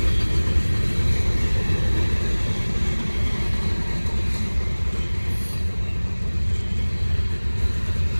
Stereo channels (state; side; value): inverted; both; correlation -1.00